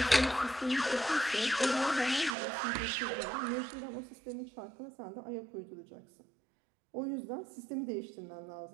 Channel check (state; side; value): drops out; left; at 2.3 s